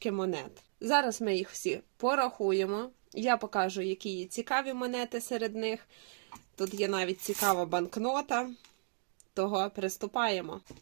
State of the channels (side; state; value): left; silent; digital silence